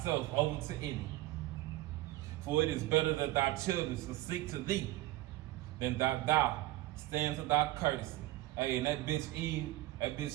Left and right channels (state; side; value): quieter; left; 16.9 dB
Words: over to any. For it is better that thy children should seek to thee than that thou stand to thy courtesy. Hey, and that bitch Eve,